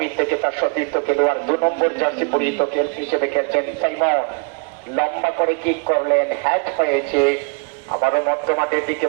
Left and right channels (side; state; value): left; quieter; 33.9 dB